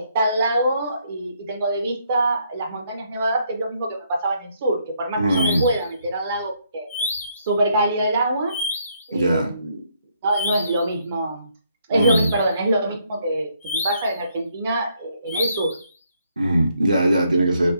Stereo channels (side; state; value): both; inverted; correlation -0.72